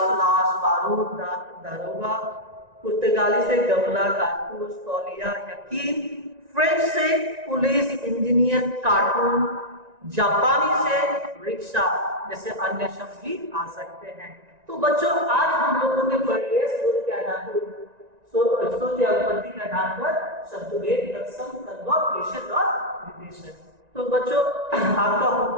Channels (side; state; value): left; late; 1.9 ms